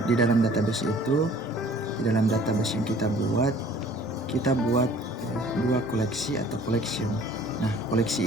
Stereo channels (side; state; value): both; normal; correlation 0.52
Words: database itu, di dalam database yang kita buat dua koleksi atau collection. Nah,